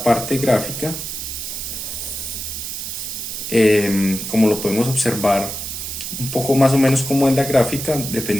parte gráfica. Como lo podemos observar un poco más o menos como en la gráfica,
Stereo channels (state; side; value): noise; right; hiss, 6 dB below the sound